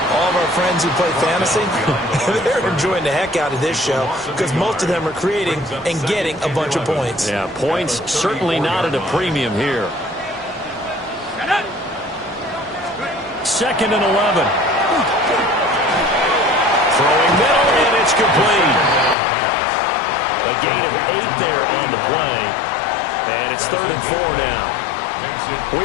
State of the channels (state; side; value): drops out; right; at 19.2 s